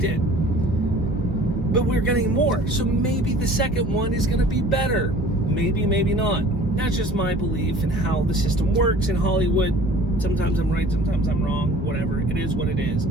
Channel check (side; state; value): both; normal; correlation 0.47